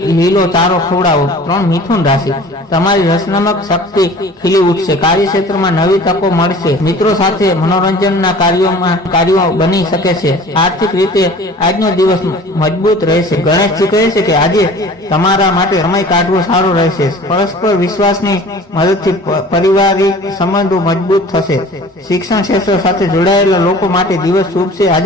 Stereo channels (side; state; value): both; normal; correlation 0.45